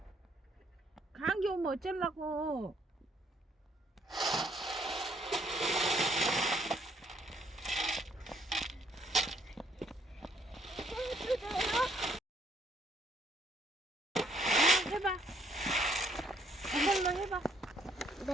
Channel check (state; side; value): normal; both; correlation 0.68